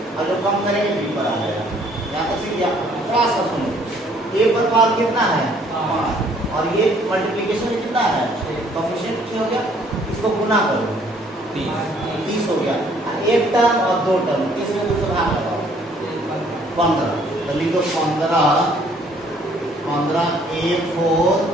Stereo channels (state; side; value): normal; both; correlation 0.61